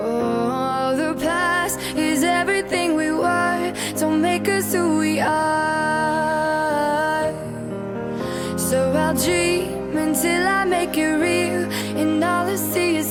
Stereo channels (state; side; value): identical; both; correlation 1.00